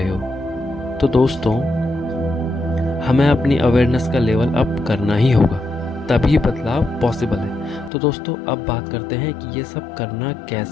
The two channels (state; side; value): drops out; right; at 7.9 s